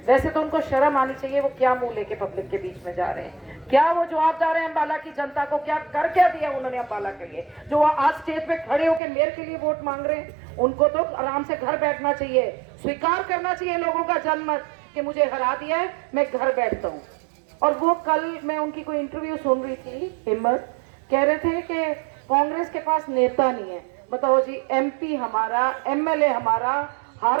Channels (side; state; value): left; drops out; at 9.0 s